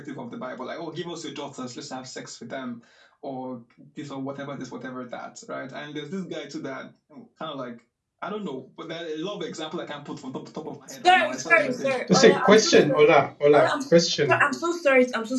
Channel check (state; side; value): identical; both; correlation 1.00